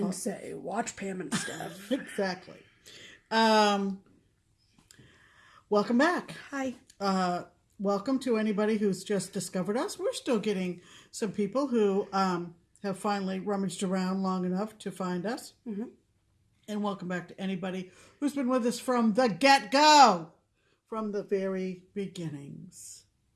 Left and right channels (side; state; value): both; identical; correlation 1.00